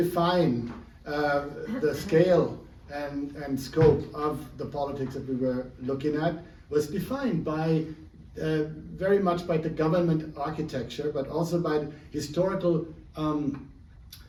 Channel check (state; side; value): identical; both; correlation 1.00